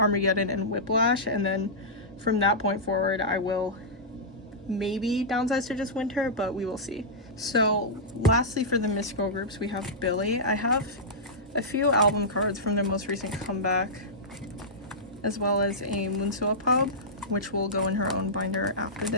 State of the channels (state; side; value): normal; both; correlation -0.14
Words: and Whiplash, and then from that point forward I will maybe downsize to just winter, but we will see. So lastly, for the Misc girl groups, we have billlie. I have a few album cards from their most recent comeback, as well as a Moonsuwa pub, which will go in her own binder after